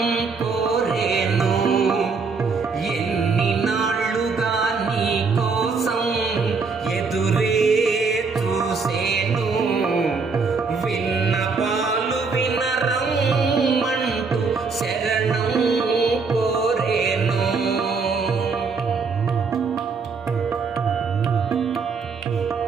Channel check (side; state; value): left; quieter; 4.7 dB